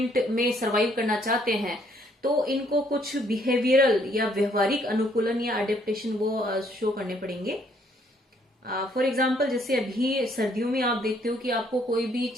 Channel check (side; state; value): both; normal; correlation 0.66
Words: में सरवाइव करना चाहते हैं तो इनको कुछ बिहेवियरल या व्यवहारिक अनुकूलन या अडेप्टेशन वो शो करने पड़ेंगे। फॉर एग्जाम्पल जैसे अभी सर्दियों में आप देखते हो कि आपको कोई भी